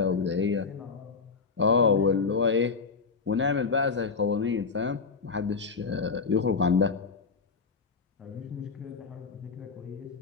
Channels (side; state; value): right; quieter; 4.9 dB